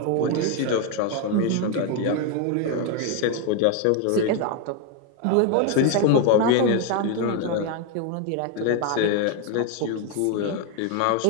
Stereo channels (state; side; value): different; both; correlation 0.01